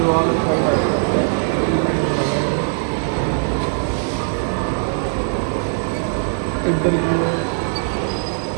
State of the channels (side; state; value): left; silent; digital silence